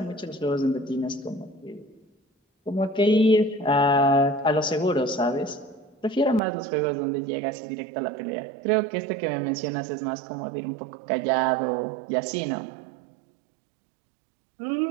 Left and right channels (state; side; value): drops out; left; at 6.4 s